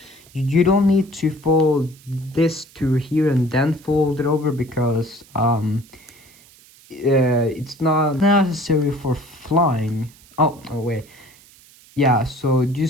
You don't need to fold this to here and then fold it over, because it's not necessary for flying. Oh wait, yeah. So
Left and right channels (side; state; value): right; noise; hiss, 26 dB below the sound